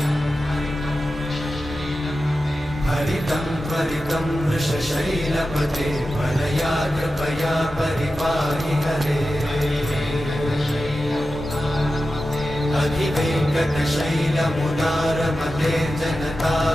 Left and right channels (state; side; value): normal; both; correlation 0.92